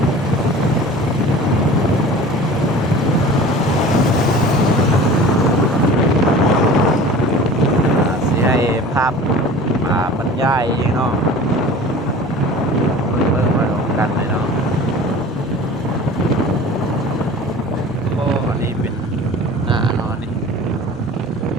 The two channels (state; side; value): noise; right; rumble, 24 dB below the sound